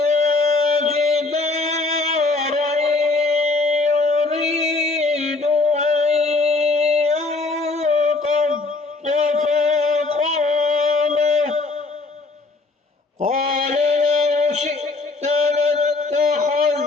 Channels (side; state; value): right; quieter; 3.5 dB